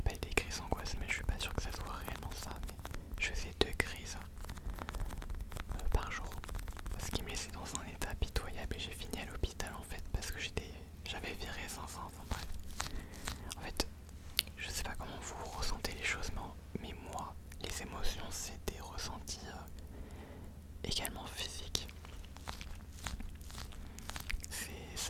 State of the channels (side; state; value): both; identical; correlation 1.00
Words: des crises angoisse, mais je suis pas sûr que ça soit réellement ça. Mais je faisais 2 crises par jour, ce qui me laissait dans un état pitoyable, et j'ai fini à l'hôpital en fait parce que j'avais viré 500, enfin bref. En fait, je sais pas comment vous ressentez les choses, mais moi, les émotions, c'est des ressentis également physiques.